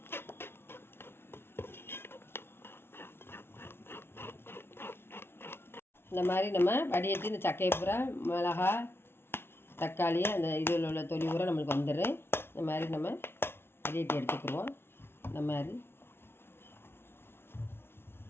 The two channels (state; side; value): late; right; 0.12 ms